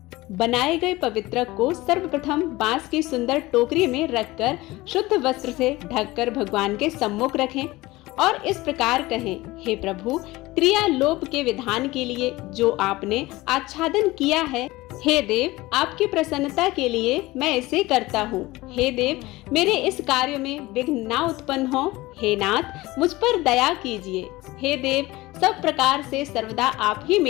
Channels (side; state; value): right; quieter; 19.6 dB